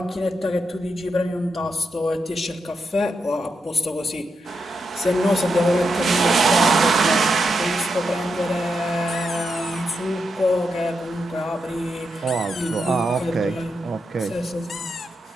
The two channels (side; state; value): both; normal; correlation 0.85